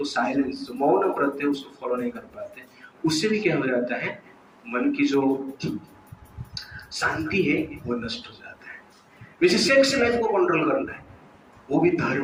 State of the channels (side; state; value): both; identical; correlation 1.00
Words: साइलेंस, जो मौन व्रत है, उसको फॉलो नहीं कर पाते। उससे भी क्या हो जाता है? मन की जो शांति है वो नष्ट हो जाता है। वैसे सेक्स लाइफ को कंट्रोल करना है, वो भी